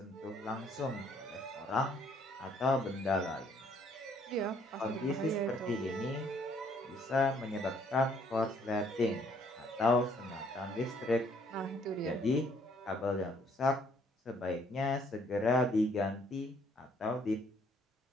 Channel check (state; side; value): normal; both; correlation 0.64